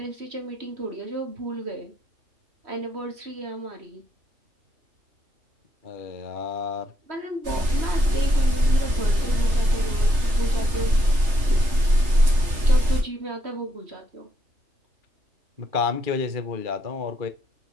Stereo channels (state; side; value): late; left; 3.3 ms